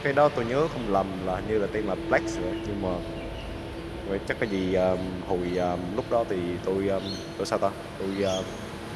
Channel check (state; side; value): identical; both; correlation 1.00